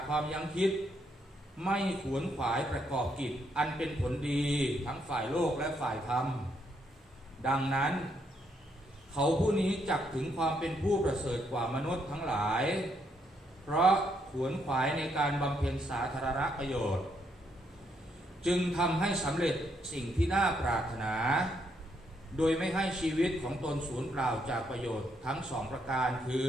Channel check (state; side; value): normal; both; correlation 0.75